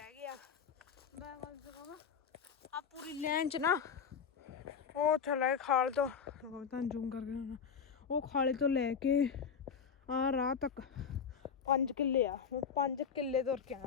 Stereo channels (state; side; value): quieter; right; 6.8 dB